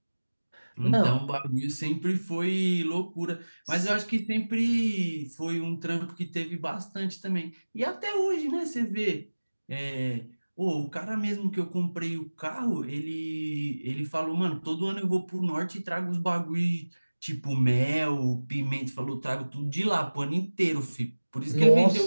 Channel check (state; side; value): inverted; both; correlation -1.00